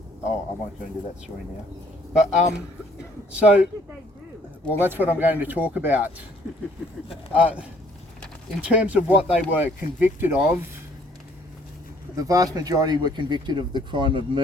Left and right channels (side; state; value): both; normal; correlation 0.62